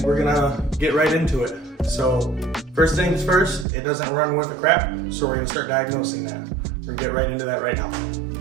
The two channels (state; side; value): drops out; left; at 3.7 s